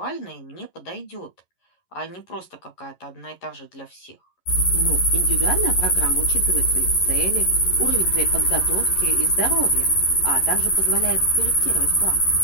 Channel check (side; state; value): right; late; 11 ms